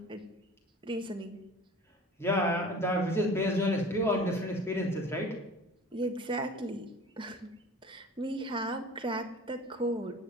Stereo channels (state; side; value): normal; both; correlation 0.42